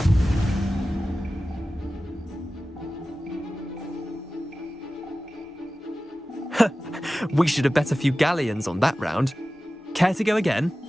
We should have bet a few galleons on that round. Care to go again?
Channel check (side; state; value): both; normal; correlation 0.95